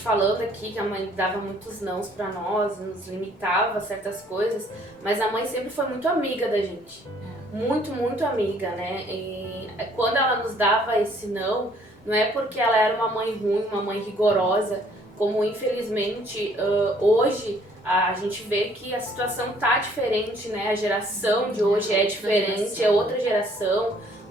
aqui que a mãe dava muitos nãos pra nós, nos limitava a certas coisas, mas a mãe sempre foi muito amiga da gente. Muito, muito amiga, né? E quando ela nos dava esse não é porque ela era uma mãe ruim, uma mãe rigorosa, como infelizmente hoje a gente vê que a situação tá diferente, né? A geração de hoje é diferente, é outra geração.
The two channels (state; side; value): normal; both; correlation 0.61